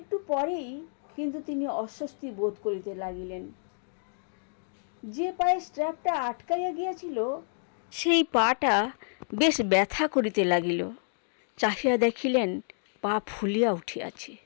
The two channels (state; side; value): silent; right; digital silence